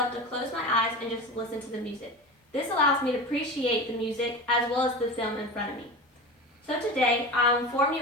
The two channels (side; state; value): both; normal; correlation 0.29